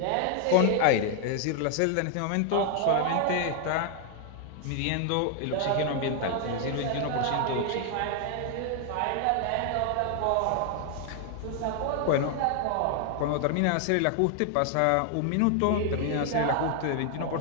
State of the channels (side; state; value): both; different; correlation 0.00